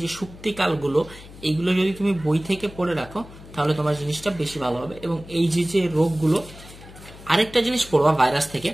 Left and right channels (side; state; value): left; noise; hum, 18 dB below the sound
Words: যে সুপ্তিকালগুলো, এইগুলো যদি তুমি বই থেকে পড়ে রাখো, তাহলে তোমার জিনিসটা বেশি ভালো হবে। এবং এই যে রোগগুলো, আরেকটা জিনিস পড়বা ভাইরাস থেকে,